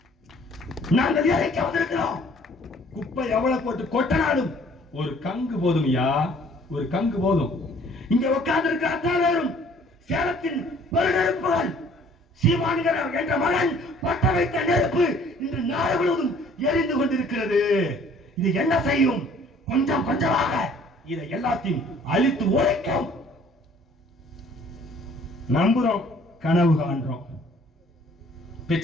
நாங்கள் எரிக்க வந்திருக்கிறோம். குப்பை எவ்வளவு போட்டு கொட்டனாலும் ஒரு கங்கு போதும் ஐயா, ஒரு கங்கு போதும். இங்க உட்கார்ந்து இருக்கிற அத்தனை பேரும் சேலத்தின் பெருநெருப்புகள். சீமான்கிற என்ற மகன் பட்ட வைத்த நெருப்பு இன்று நாடு முழுவதும் எரிந்து கொண்டிருக்கிறது. இது என்ன செய்யும்? கொஞ்சம் கொஞ்சமாக இதை எல்லாத்தையும் அழித்து உழைக்கும். நம்புறோம், கனவு காண்றோம்.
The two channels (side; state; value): both; normal; correlation 0.56